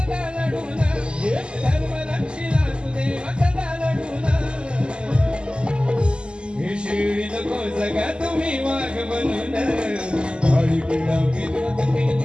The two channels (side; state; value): left; late; 0.050 ms